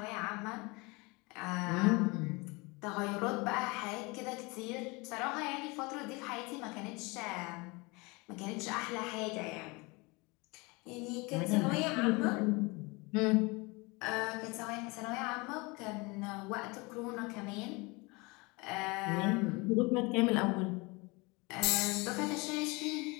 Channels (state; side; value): quieter; right; 26.3 dB